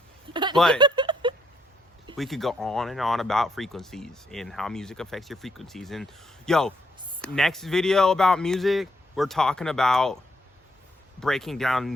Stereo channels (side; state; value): both; normal; correlation 0.74